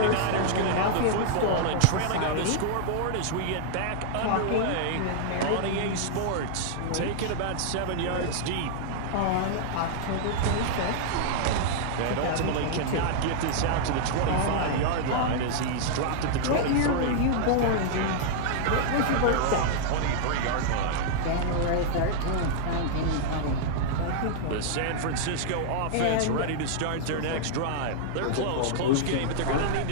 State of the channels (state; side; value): different; both; correlation -0.01